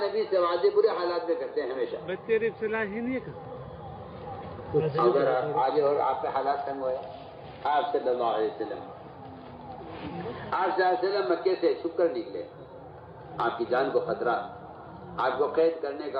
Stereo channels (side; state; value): both; identical; correlation 1.00